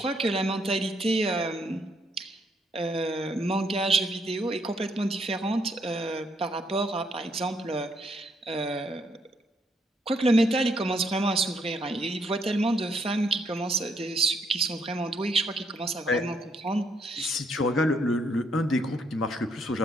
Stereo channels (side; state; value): both; normal; correlation 0.73